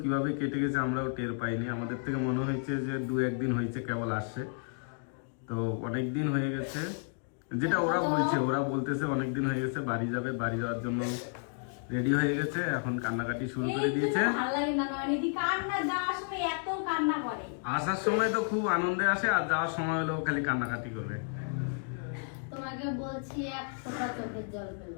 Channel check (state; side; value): silent; right; 57 dB below the other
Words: কিভাবে কেটে গেছে আমরাও টের পাইনি। আমাদের থেকে মনে হয়েছে যে 2-1 দিন হয়েছে কেবল আসছে। তো অনেক দিন হয়ে গেছে, যেটা ওরা বলতেছে অনেক দিন হয়ে গেছে বাড়ি যাবে, বাড়ি যাওয়ার জন্য রেডি হয়ে গেছে, এখন কান্নাকাটি শুরু করে দিয়েছে। আসার সময় তো খুব আনন্দে আসে, আর যাওয়ার সময় হলেও খালি কান্নাকাটি করবে। তোমাকে বলছি এক ফোঁটা চোখের জল